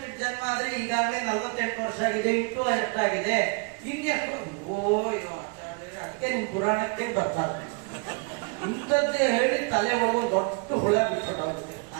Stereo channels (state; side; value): quieter; left; 33.4 dB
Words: 8 ಜನ್ಮ ಆದ್ರೆ ಈಗಾಗಲೇ 48 ವರ್ಷ ಆಗಿದೆ, ಇಟ್ಟು ಎಷ್ಟಾಗಿದೆ, ಇನ್ನೆಷ್ಟು. ಅದಕ್ಕೆ ನಿಮ್ ಪುರಾಣಕ್ಕೆ ಬರ್ತಾರೆ, ಇಂಥದ್ದೇ ಹೇಳಿ ತಲೆ ಒಳಗೆ ದೊಡ್ಡ ಹುಳ ಬಿಟ್ಬಿಟ್ಟೋಗುತ್ತೆ.